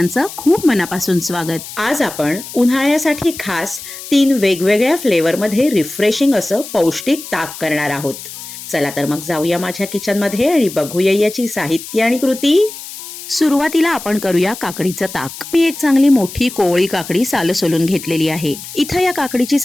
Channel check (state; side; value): noise; left; hiss, 12 dB below the sound